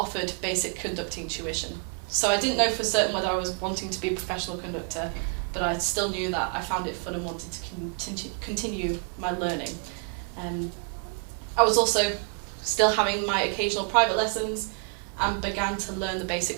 basic conducting tuition. So I didn't know for certain whether I was wanting to be a professional conductor, but I still knew that I found it fun and wanted to continue my learning. I was also still having my occasional private lessons and began to learn the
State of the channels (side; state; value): left; quieter; 37.5 dB